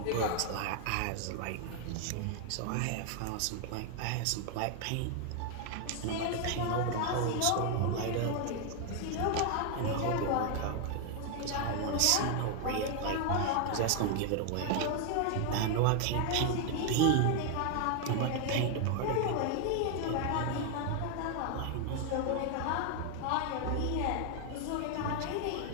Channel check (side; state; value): both; different; correlation 0.00